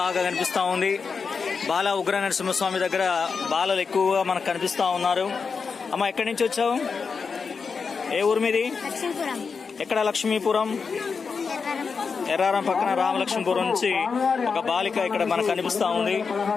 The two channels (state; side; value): quieter; right; 5.3 dB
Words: కనిపిస్తూ ఉంది. బాల ఉగ్ర నరసింహస్వామి దగ్గర బాలలు ఎక్కువగా మనకు కనిపిస్తూ ఉన్నారు. అమ్మ, ఎక్కడి నుంచి వచ్చావు? ఏ ఊరు మీది? ఎక్కడ? లక్ష్మీపురం. ఎర్రారం పక్కన రామలక్ష్మీపురం నుంచి ఒక బాలిక ఇక్కడ మనకు కనిపిస్తూ ఉంది.